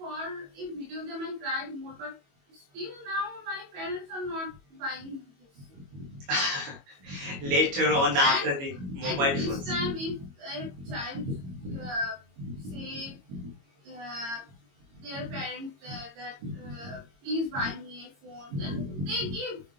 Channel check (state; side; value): late; left; 22 ms